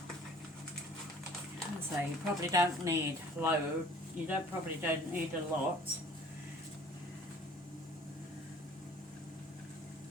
So you probably don't need loads. You probably don't need a lot.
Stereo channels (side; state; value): both; normal; correlation 0.51